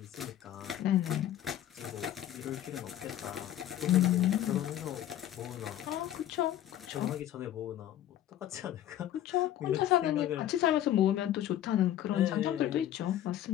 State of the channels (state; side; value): quieter; right; 12.0 dB